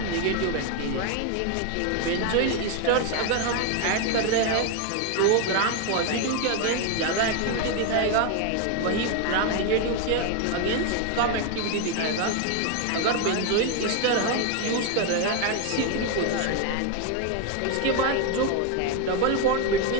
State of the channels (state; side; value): different; both; correlation 0.01